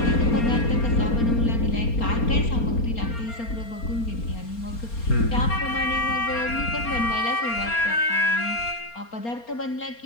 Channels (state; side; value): late; right; 4.3 ms